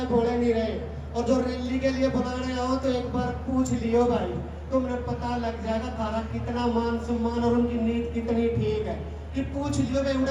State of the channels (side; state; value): both; identical; correlation 1.00